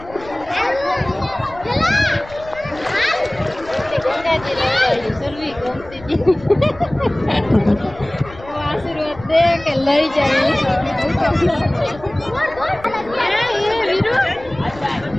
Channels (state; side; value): noise; left; rumble, 19 dB below the sound